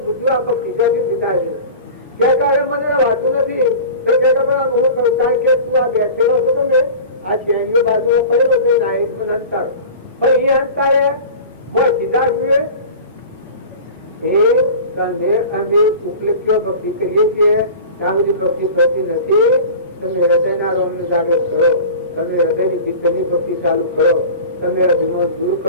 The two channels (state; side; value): inverted; both; correlation -0.37